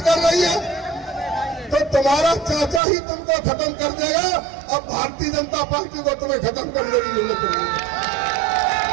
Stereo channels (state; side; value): drops out; left; at 2.8 s